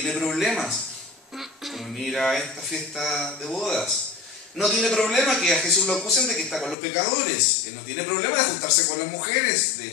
problemas con ir a esta fiesta de bodas. No tiene problema que a Jesús lo acusen de que está con los pecadores. Él no tiene problema de juntarse con las mujeres,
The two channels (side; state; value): right; drops out; at 6.8 s